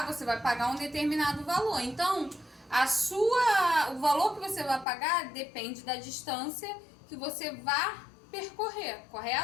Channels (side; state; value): right; drops out; at 4.9 s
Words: pagar um determinado valor. Então, o valor que você vai pagar depende da distância que você vai percorrer,